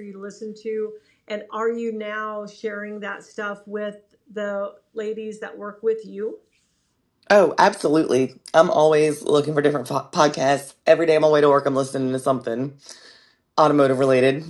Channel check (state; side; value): identical; both; correlation 1.00